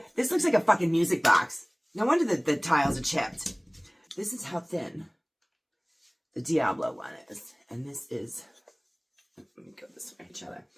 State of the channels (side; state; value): both; identical; correlation 1.00